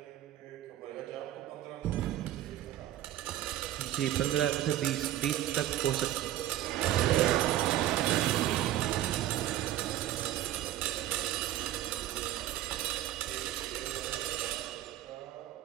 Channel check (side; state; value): left; quieter; 13.4 dB